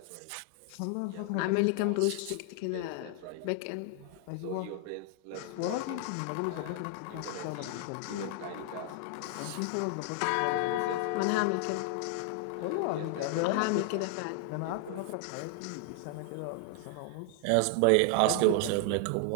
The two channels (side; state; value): both; different; correlation 0.00